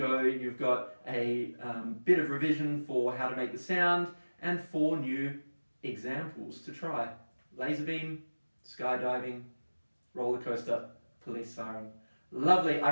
you've got a bit of revision for how to make the sound and 4 new examples to try. Laser beam, skydiving, roller coaster, police siren. Lovely.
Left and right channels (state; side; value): inverted; both; correlation -1.00